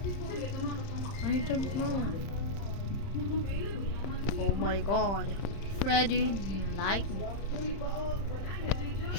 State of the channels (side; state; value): right; late; 31 ms